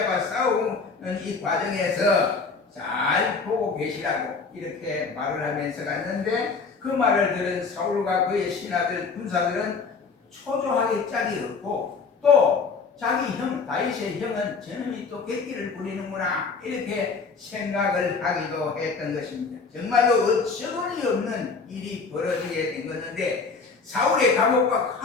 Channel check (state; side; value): quieter; right; 4.7 dB